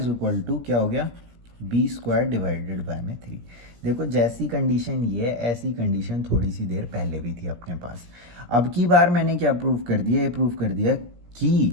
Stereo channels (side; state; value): left; late; 17 ms